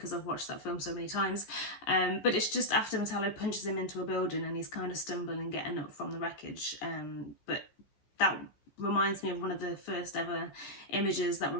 I've watched that film so many times. But it's just after Metallo punches him into a building and he's kind of stumbling getting up from the wreckage. But that reminds me of one of the first ever images that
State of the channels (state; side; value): late; right; 14 ms